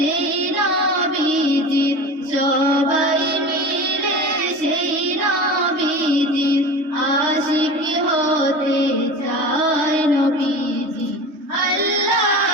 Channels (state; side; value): late; left; 3.2 ms